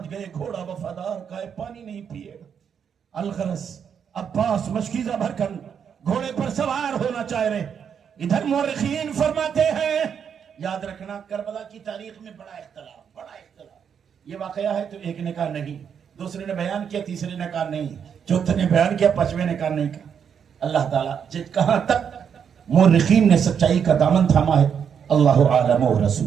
گئے گھوڑا وفادار کا ہے، پانی نہیں پیے گا۔ الغرض عباس مشکیزہ بھر کر گھوڑے پر سوار ہونا چاہ رہے۔ ادھر مورخین فرماتے ہیں، یاد رکھنا کربلا کی تاریخ میں بڑا اختلاف، یہ واقعہ ہے تو ایک نے کہا نہیں، دوسرے نے بیان کیا، تیسرے نے کہا نہیں، چوتھے نے بیان کیا، پانچویں نے کہا نہیں کہا۔ اللہ تعالیٰ کہاں تک مورخین نے سچائی کا دامن تھاما ہے، اللہ عالم و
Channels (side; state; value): left; quieter; 7.5 dB